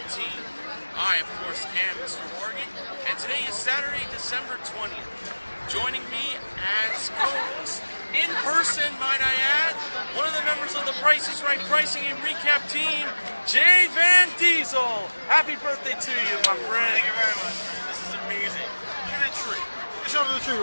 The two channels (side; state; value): both; inverted; correlation -1.00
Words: I, of course, am Mr. Morgan, and today is Saturday, December 20th. Joining me as co-host, in person, might I add, one of the members of the Price is Right Pricing and Recap team, jvandiesel. Happy birthday to you, my friend. Thank you very much, man. This is amazing. Look at that tree. Show me the tree